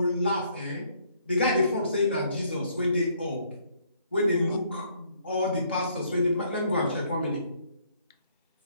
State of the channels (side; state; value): both; inverted; correlation -0.66